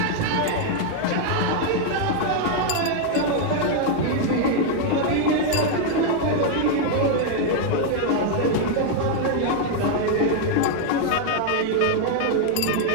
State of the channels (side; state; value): both; different; correlation 0.00